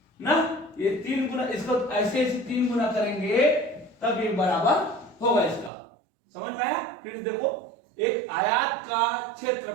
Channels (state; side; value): drops out; left; at 5.7 s